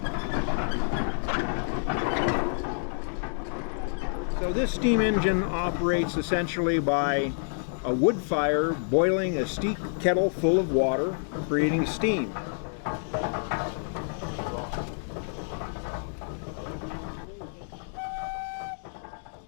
So this steam engine operates essentially by a wood fire boiling a steep kettle full of water, creating steam.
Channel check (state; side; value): silent; right; digital silence